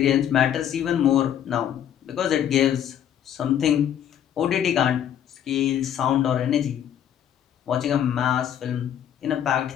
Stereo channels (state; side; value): quieter; right; 10.0 dB